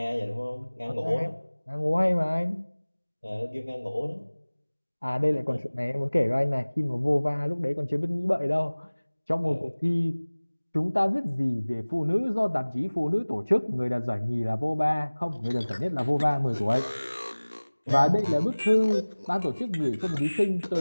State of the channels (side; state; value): both; inverted; correlation -1.00